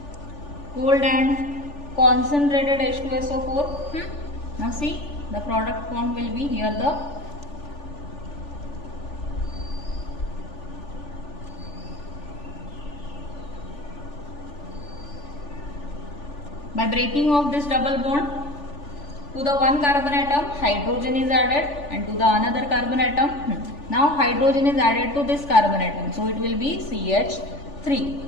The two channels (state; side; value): late; right; 3.4 ms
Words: cold and concentrated H2SO4. Now see, the product formed will be here the by breaking of this double bond, to the one carbon atom hydrogen is added, and to the another carbon atom, now hydrogen is added to this carbon atom, so it will be CH3.